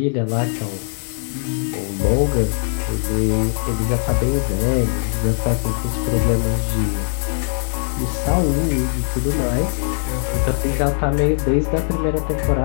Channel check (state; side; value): silent; right; digital silence